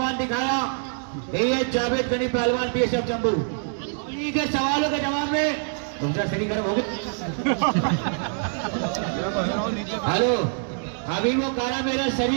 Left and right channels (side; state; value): left; silent; 62 dB below the other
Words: दिखाया। ये जावेद गनी पहलवान बीएसएफ जम्मू। इन्हीं के सवालों के जवाब में तुमसे शरीर गर्म हो गया। हेलो अभी वो कह रहा मेरा